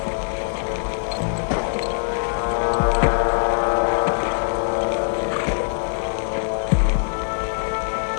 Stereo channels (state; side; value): silent; right; 64 dB below the other